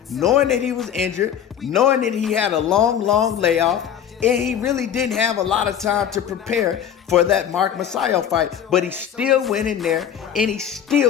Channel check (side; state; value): right; quieter; 9.1 dB